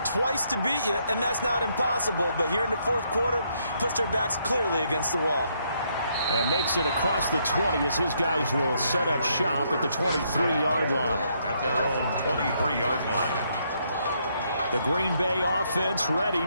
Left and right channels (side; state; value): both; inverted; correlation -0.73